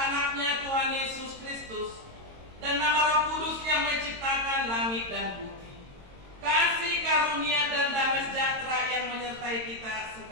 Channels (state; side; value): late; left; 22 ms